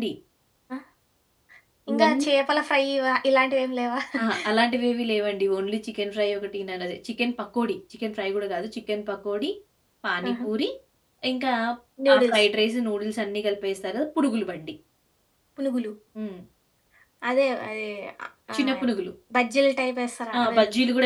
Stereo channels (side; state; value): both; identical; correlation 1.00